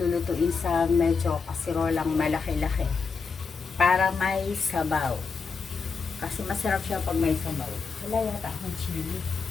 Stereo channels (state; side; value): quieter; right; 5.1 dB